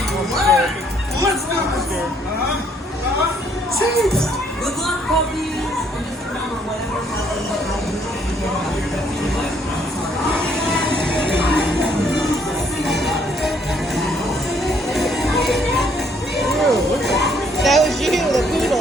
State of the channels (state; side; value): normal; both; correlation 0.66